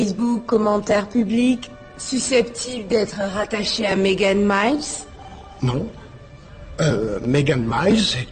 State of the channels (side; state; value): both; identical; correlation 1.00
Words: commentaires publics, susceptibles d'être rattachés à Megan Miles? Non. Megan Miles